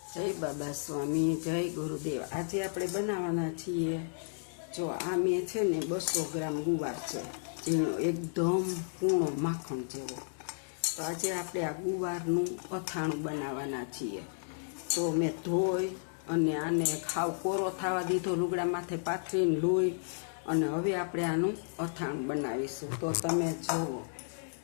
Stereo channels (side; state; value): right; silent; digital silence